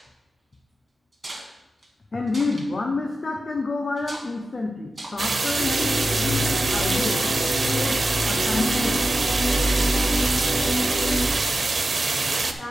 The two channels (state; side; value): normal; both; correlation 0.92